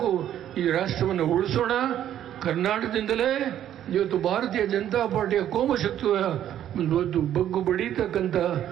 ಈ ರಾಷ್ಟ್ರವನ್ನು ಉಳಿಸೋಣ. ಕರ್ನಾಟಕದಿಂದಲೇ ಇವತ್ತು ಭಾರತೀಯ ಜನತಾ ಪಾರ್ಟಿಯ ಕೋಮಶಕ್ತಿಯ ಒಂದು ಬಗ್ಗು ಬಡೀತಕ್ಕಂಥ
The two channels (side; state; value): left; quieter; 11.0 dB